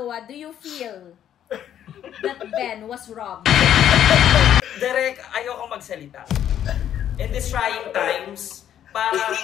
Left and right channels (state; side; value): quieter; right; 10.4 dB